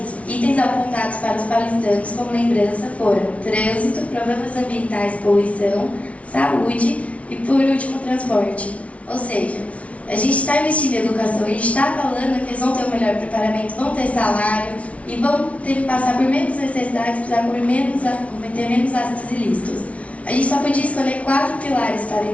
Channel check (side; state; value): right; late; 0.064 ms